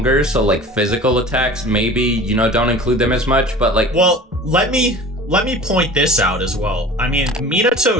so like physical attacks maybe, you know, don't include them as much, but like. Well, let me point this out as well. I mean,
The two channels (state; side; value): normal; both; correlation 0.40